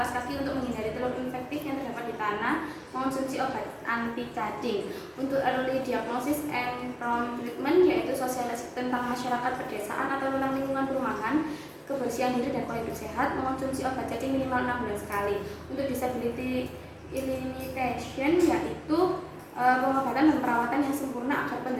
kaki untuk menghindari telur infektif yang terdapat di tanah, mengonsumsi obat anti cacing. Untuk early diagnosis and prompt treatment yaitu sosialisasi tentang masyarakat pedesaan atau tentang lingkungan perumahan, kebersihan diri dan pola hidup sehat, mengonsumsi obat cacing minimal 6 bulan sekali. Untuk disability elimination yaitu pengobatan dan perawatan yang sempurna agar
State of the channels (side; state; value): both; identical; correlation 1.00